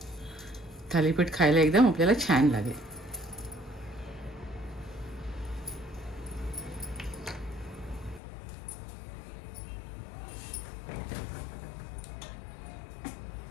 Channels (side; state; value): right; drops out; at 8.2 s